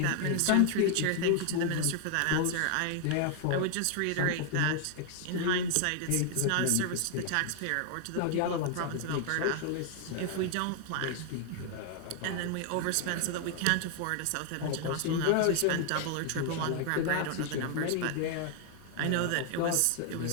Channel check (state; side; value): different; both; correlation 0.00